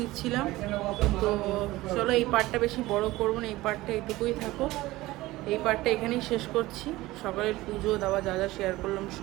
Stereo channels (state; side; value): quieter; left; 18.4 dB